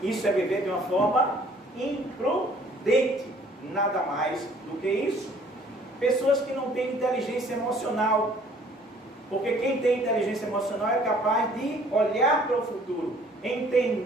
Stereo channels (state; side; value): normal; both; correlation 0.57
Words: Isso é viver de uma forma imprudente. Nada mais do que isso. Pessoas que não têm inteligência emocional. Porque quem tem inteligência emocional é capaz de olhar para o futuro,